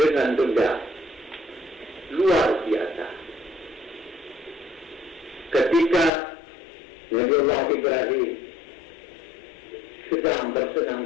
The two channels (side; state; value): right; drops out; at 6.1 s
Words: benda luar biasa. Ketika Nabi Allah Ibrahim sedang